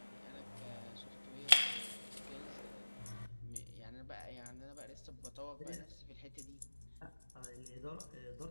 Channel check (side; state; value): both; inverted; correlation -1.00